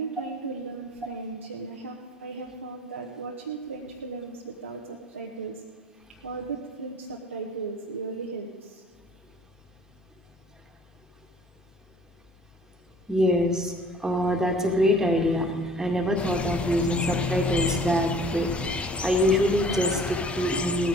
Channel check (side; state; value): both; normal; correlation 0.52